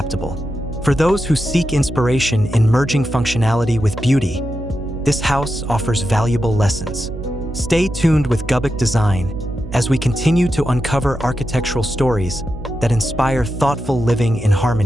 For those who seek inspiration in merging functionality with beauty, this house offers valuable lessons. Stay tuned with Gubuk Design as we continue to uncover architectural stories that inspire thoughtful living in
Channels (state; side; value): noise; right; hum, 12 dB below the sound